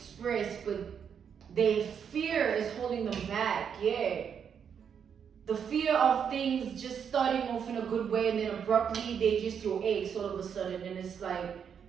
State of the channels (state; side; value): quieter; left; 7.5 dB